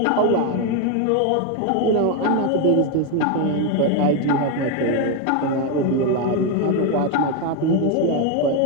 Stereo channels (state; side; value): different; both; correlation 0.02